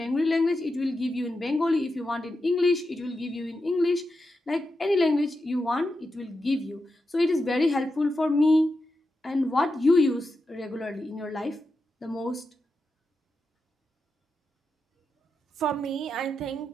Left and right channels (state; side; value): normal; both; correlation 0.88